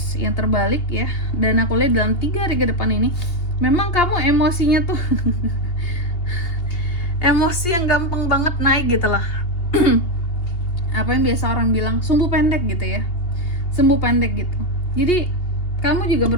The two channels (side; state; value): right; late; 2.8 ms